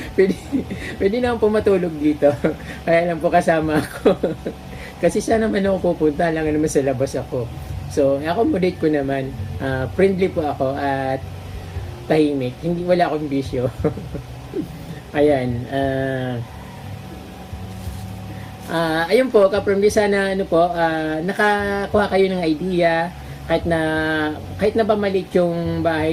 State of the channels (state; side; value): identical; both; correlation 1.00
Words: Pwede naman po matulog dito. Kaya lang po kasama ako. Kasi saan naman ako pupunta, lang naman sa labas ako. So, accommodate ko naman. Friendly po ako at tahimik. Wala akong bisyo. Ayan. Ayun po, ka-Promdi, sana nakakuha kayo ng idea. Kahit na ba maliit yung